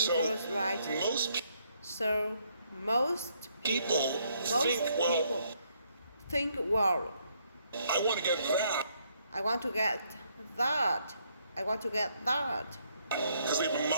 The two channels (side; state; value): both; inverted; correlation -0.71